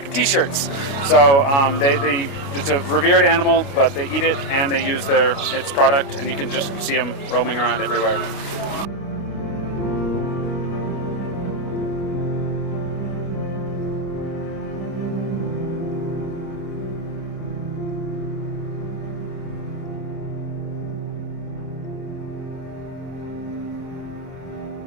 T-shirts. So it's a revered animal, but they eat it and they use its product, and you can just see them roaming around everywhere.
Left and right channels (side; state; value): right; late; 29 ms